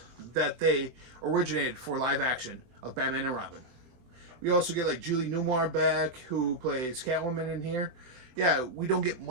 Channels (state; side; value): late; left; 23 ms